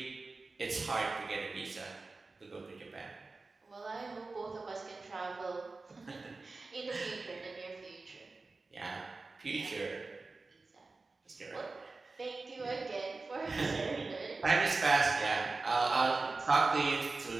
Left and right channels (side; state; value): left; quieter; 3.7 dB